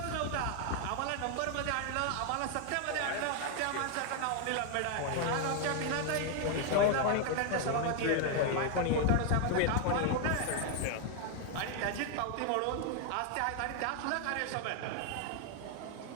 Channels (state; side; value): different; both; correlation 0.00